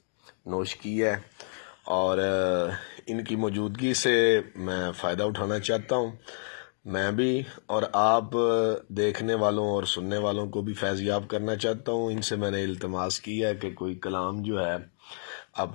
نوش کی ہے اور ان کی موجودگی سے میں فائدہ اٹھانا چاہتا ہوں۔ میں بھی اور آپ دیکھنے والوں اور سننے والوں کو بھی فیض یاب کرنا چاہتا ہوں۔ ان سے میں نے التماس کی ہے کہ کوئی کلام جو ہے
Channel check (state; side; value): silent; right; digital silence